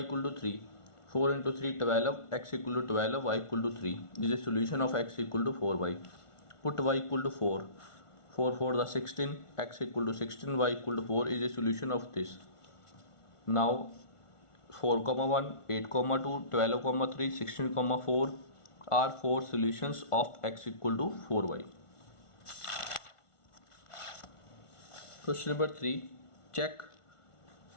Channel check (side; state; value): right; late; 1.4 ms